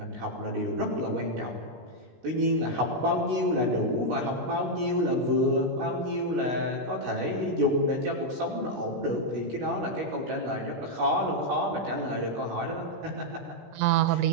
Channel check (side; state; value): left; late; 16 ms